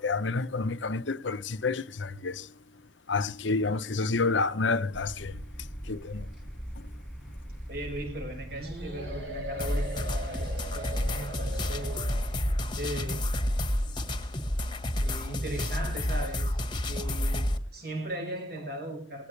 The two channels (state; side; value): normal; both; correlation 0.53